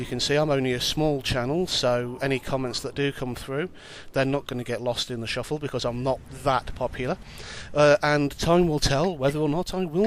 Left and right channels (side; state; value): both; identical; correlation 1.00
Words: can see, I'm only a small channel, so any comments that do come through, they're not going to get lost in the shuffle because I'm not that popular. And time will tell whether or not I